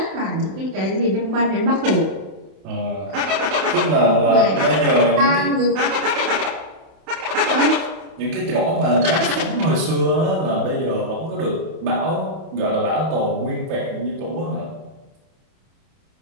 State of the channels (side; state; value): left; late; 31 ms